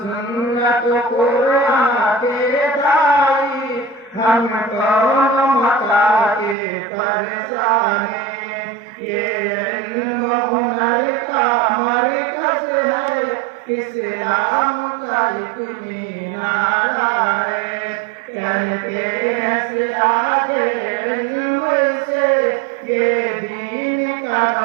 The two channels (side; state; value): left; drops out; at 6.6 s